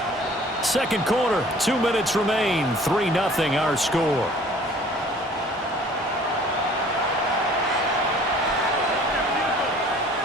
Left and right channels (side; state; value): both; normal; correlation 0.52